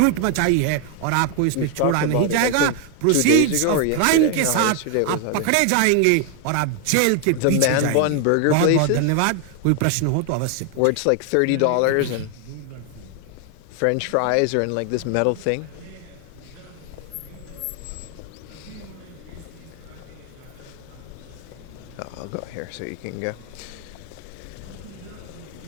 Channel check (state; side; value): different; both; correlation 0.00